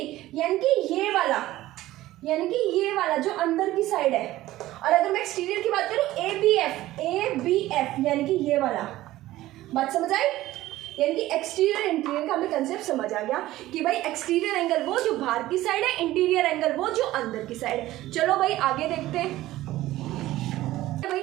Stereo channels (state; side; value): quieter; left; 16.0 dB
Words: यानी कि ये वाला, यानी कि ये वाला जो अंदर की साइड है। और अगर मैं एक्सटीरियर की बात करूं ABF यानी कि ये वाला। बात समझ आई, यानी कि एक्सटीरियर इंटीरियर का हमें कंसेप्ट समझ आ गया कि भाई एक्सटीरियर एंगल वो जो बाहर की साइड है, इंटीरियर एंगल वो जो अंदर की साइड है। चलो भाई आगे देखते हैं,